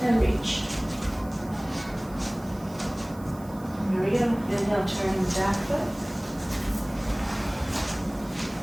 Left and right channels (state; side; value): noise; right; hiss, 22 dB below the sound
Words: and reach. Here we go. Inhale, turn the back foot.